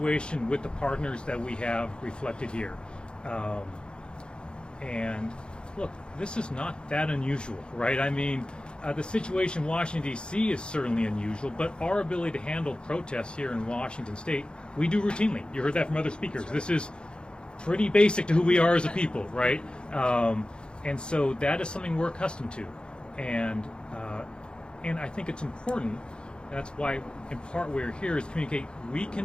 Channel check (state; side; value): late; right; 0.052 ms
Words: with the partners that we have reflected here. And look, this is not that unusual, right? I mean, the situation in Washington, D.C. is certainly unusual, but our ability to handle protests here in Washington State, we do routinely. You heard that from other speakers. This is pretty basic to who we are as a people, right? And so that is something we're accustomed to. And I think it's important. That's why, in part, we're here is to communicate we